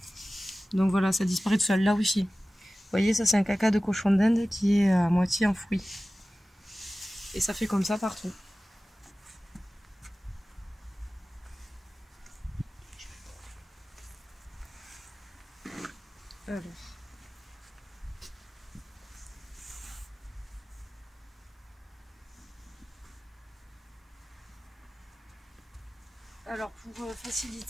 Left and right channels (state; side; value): normal; both; correlation 0.96